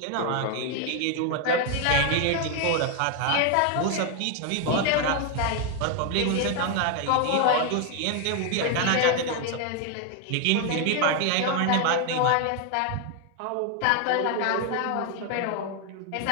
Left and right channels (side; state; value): both; different; correlation 0.01